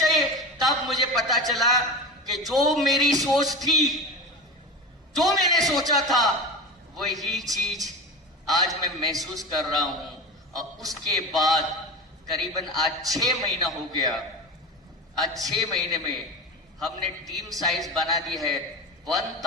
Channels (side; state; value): both; normal; correlation 0.26